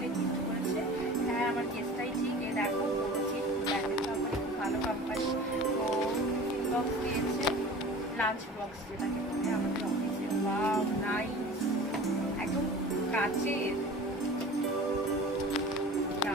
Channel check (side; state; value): both; normal; correlation 0.40